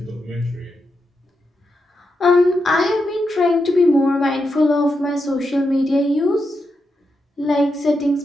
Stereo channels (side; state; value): both; normal; correlation 0.85